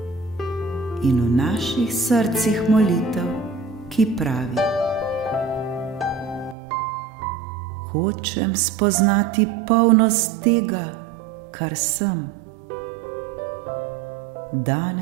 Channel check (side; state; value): left; drops out; at 6.6 s